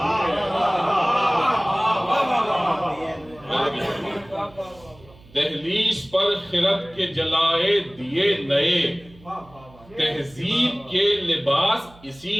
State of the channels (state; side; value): noise; right; hum, 25 dB below the sound